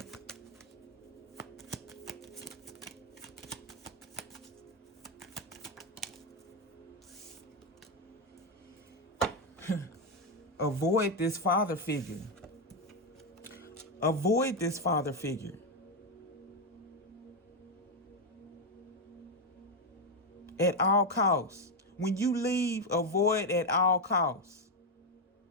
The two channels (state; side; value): normal; both; correlation 0.06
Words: Avoid this father figure. Avoid this father figure. At all costs. When you leave, avoid at all costs.